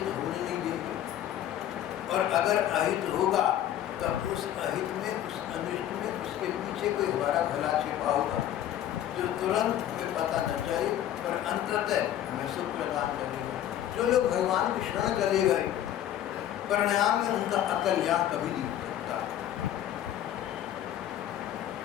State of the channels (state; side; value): quieter; right; 11.5 dB